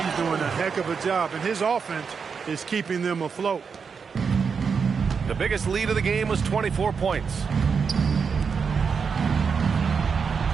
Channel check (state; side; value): quieter; left; 5.9 dB